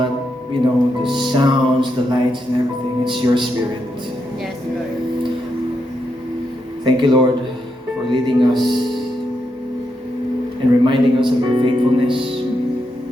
the sounds, the lights, and everything. It's your Spirit. Yes, Lord. Thank you, Lord, for leading us and reminding us of your faithfulness.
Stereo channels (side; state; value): both; normal; correlation 0.82